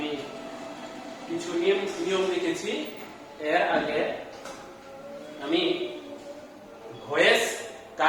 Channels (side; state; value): both; identical; correlation 1.00